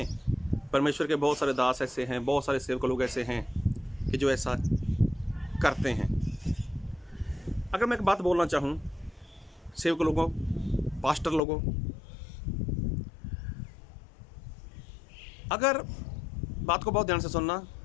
परमेश्वर के बहुत सारे दास ऐसे हैं, बहुत सारे सेवक लोग ऐसे हैं कि जो ऐसा करते हैं। अगर मैं एक बात बोलना चाहूँ सेवक लोगों, पास्टर लोगों, अगर बात को बहुत ध्यान से सुनना,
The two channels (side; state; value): right; drops out; at 11.4 s